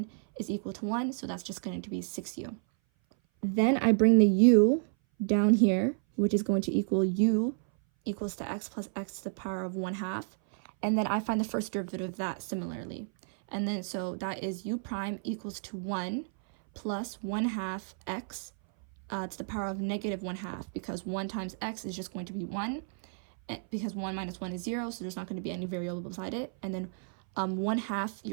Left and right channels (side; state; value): left; silent; 57 dB below the other